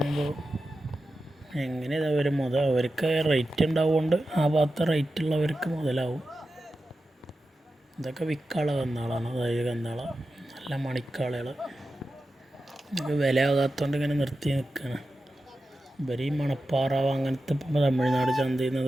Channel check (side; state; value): both; normal; correlation 0.92